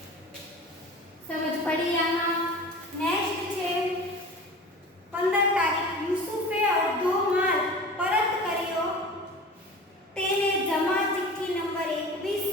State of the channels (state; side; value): normal; both; correlation 0.37